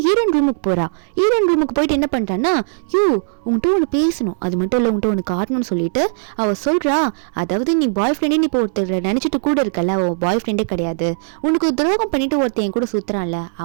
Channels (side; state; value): left; silent; 67 dB below the other